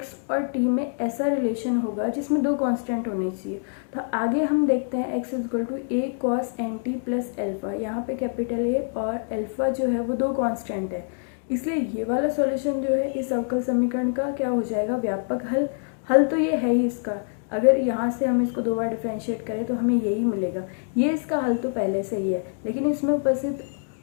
और t में ऐसा रिलेशन होगा जिसमें दो कांस्टेंट होने चाहिए। तो आगे हम देखते हैं x is equal to a cos nt plus alpha, यहाँ पे कैपिटल A और एल्फा जो है वो दो कांस्टेंट है, इसलिए ये वाला सॉल्यूशन जो है इस अवकल समीकरण का क्या हो जाएगा, व्यापक हल। हल तो ये है ही इसका, अगर यहाँ से हम इसको 2 बार डिफ्रेंशिएट करें तो हमें यही मिलेगा। ये इसका हल तो पहले से ही है, लेकिन इसमें उपस्थित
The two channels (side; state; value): right; silent; digital silence